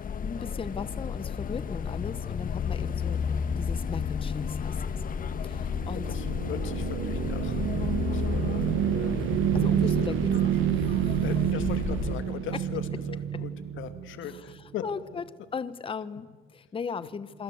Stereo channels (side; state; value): both; normal; correlation 0.47